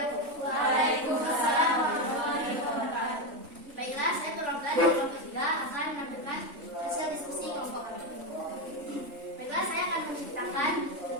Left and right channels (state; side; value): late; left; 3.5 ms